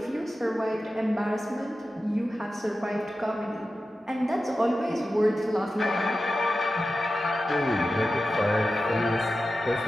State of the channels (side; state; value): both; normal; correlation 0.93